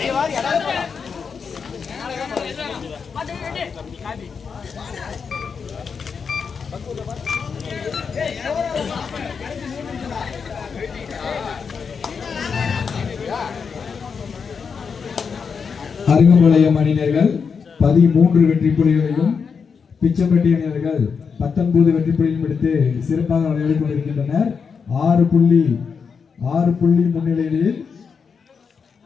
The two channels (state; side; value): quieter; right; 5.9 dB